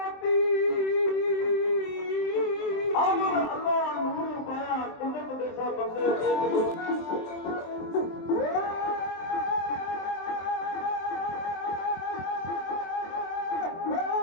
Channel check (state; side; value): late; right; 23 ms